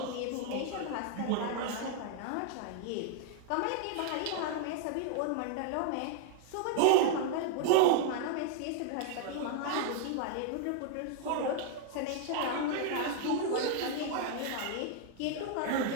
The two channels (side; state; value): both; different; correlation 0.00